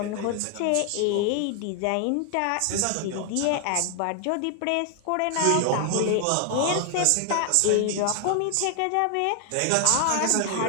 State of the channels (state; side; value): different; both; correlation 0.00